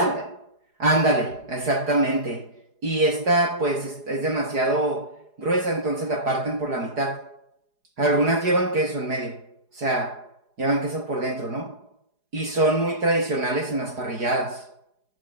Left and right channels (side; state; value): left; late; 4.8 ms